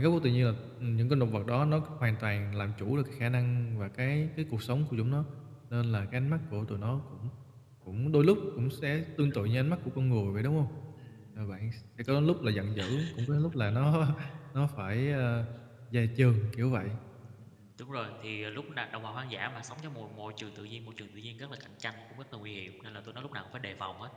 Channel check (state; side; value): identical; both; correlation 1.00